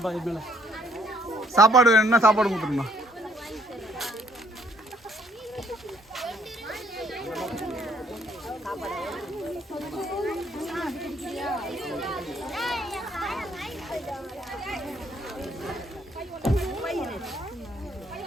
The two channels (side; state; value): both; normal; correlation 0.66